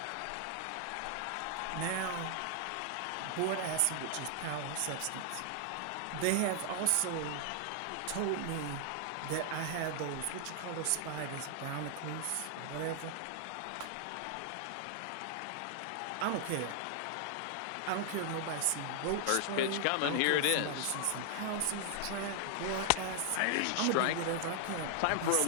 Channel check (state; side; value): different; both; correlation 0.00